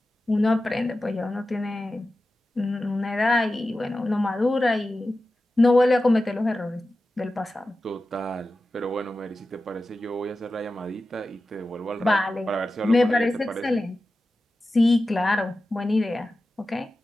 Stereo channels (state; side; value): normal; both; correlation 0.93